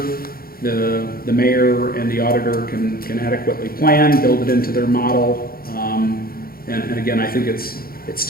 the mayor and the auditor can adequately plan, build it into their model. And again, I think it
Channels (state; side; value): late; right; 0.43 ms